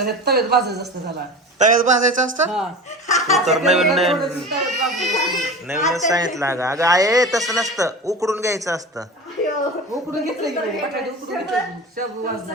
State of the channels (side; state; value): both; normal; correlation 0.32